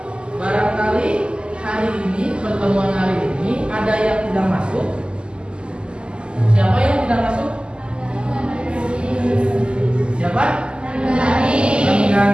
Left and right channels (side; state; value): left; late; 0.050 ms